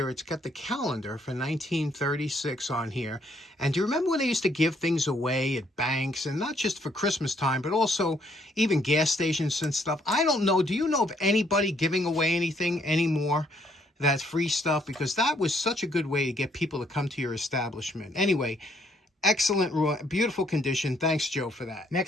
it's got the calendar for 1936 on here. And do you remember when they used to give things away at banks, and not just for Christmas time, but also even gas stations and stuff? I don't know. Do you know of anybody giving away anything anymore? That's free stuff, because that was such a good way to get people to come to your establishment. Anyway, excellent, beautiful condition. Thanks, Joe, for that.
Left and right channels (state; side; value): normal; both; correlation 0.69